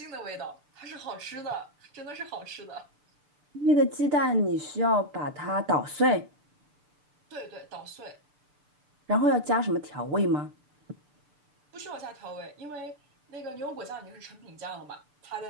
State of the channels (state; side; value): late; left; 6.8 ms